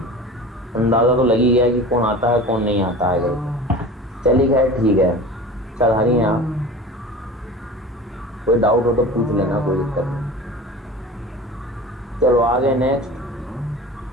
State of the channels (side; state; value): both; normal; correlation 0.36